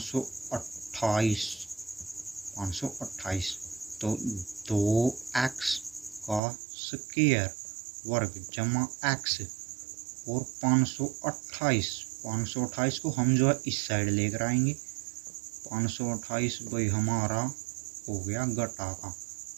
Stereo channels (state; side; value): drops out; left; at 6.4 s